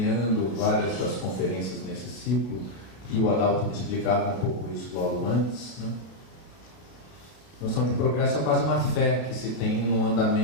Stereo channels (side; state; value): right; late; 31 ms